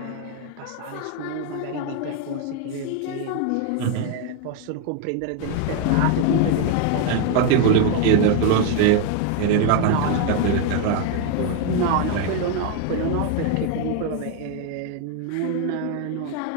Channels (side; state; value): both; different; correlation 0.01